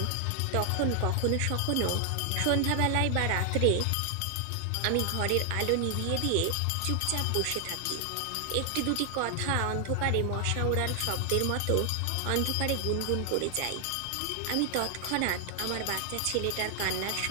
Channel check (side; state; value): both; different; correlation 0.00